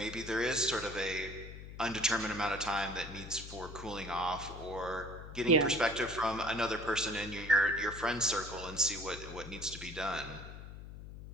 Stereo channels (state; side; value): noise; left; hum, 12 dB below the sound